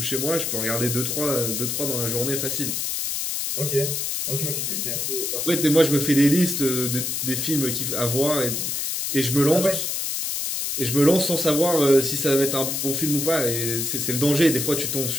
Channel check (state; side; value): noise; left; hiss, 1 dB below the sound